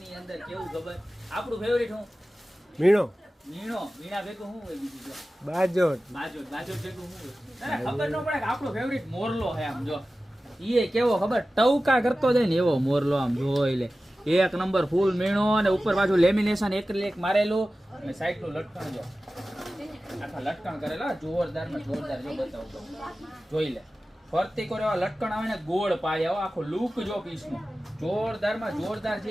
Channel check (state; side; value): normal; both; correlation 0.95